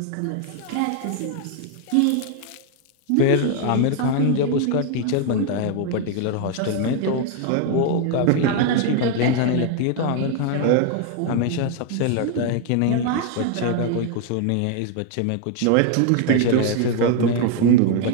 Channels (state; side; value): different; both; correlation 0.00